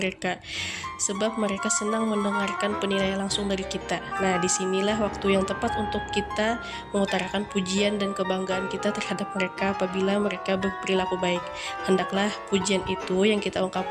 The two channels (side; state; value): both; identical; correlation 1.00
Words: sebab mereka senang mendengarkan penilaian langsung dari kita. Nah, disinilah waktu yang tepat untuk kita mengutarakan pujian dan kebanggaan kita terhadap mereka apabila mereka berperilaku baik. Hendaklah pujian itu yang kita